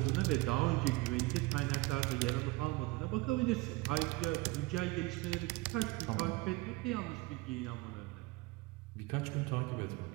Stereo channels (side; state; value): left; quieter; 22.1 dB